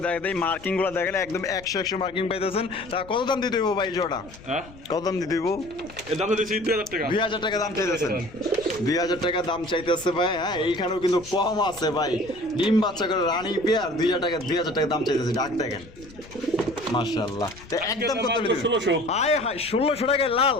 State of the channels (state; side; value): noise; left; rumble, 20 dB below the sound